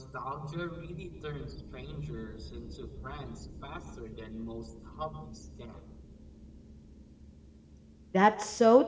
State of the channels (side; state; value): both; identical; correlation 1.00